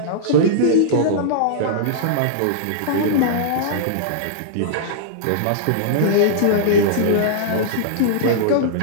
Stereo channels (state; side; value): different; both; correlation -0.02